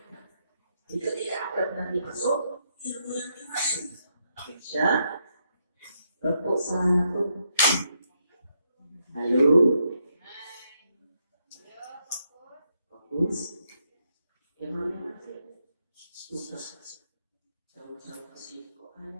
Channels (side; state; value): both; inverted; correlation -0.78